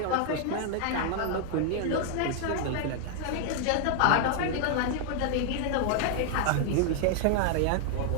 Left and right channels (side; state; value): both; different; correlation 0.00